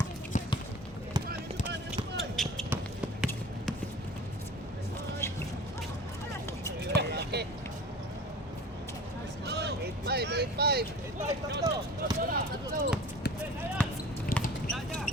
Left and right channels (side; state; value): both; normal; correlation 0.41